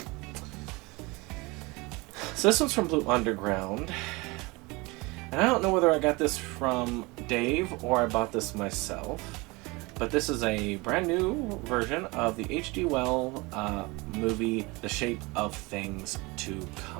So this one's from Blue Underground, and I don't know whether I got this from Dave or I bought this myself. But this is a brand new version of the H.G. Wells movie, The Shape of Things to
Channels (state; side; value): quieter; left; 24.8 dB